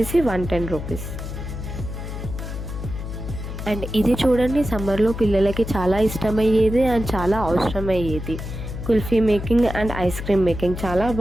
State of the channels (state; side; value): noise; left; hum, 7 dB below the sound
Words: 110 రూపీస్. అండ్ ఇది చూడండి సమ్మర్లో పిల్లలకి చాలా ఇష్టమయ్యేది అండ్ చాలా అవసరమయ్యేది, kulfi making and ice cream making. చాలా